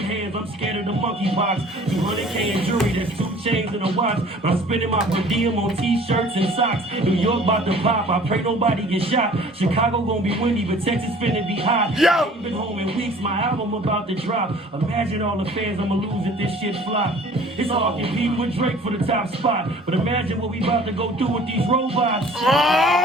hands, I'm scared of the monkey box. 200K in jewelry, there's 2 chains and a watch. But I'm spending my per diem on t-shirts and socks. New York about to pop, I pray nobody get shot. Chicago gonna be windy, but Texas finna be hot. Yo! I ain't been home in weeks, my album about to drop. Imagine all the fans I'ma lose if this shit flop. It's all competing with Drake for the top spot. But imagine what we about to go through with these robots.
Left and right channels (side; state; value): both; normal; correlation 0.50